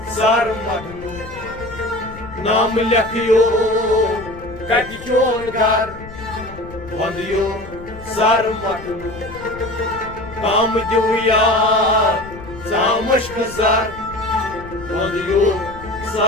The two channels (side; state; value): left; noise; rumble, 16 dB below the sound